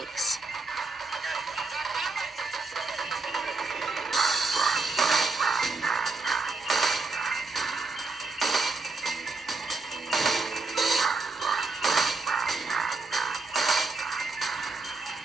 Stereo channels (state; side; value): quieter; left; 3.8 dB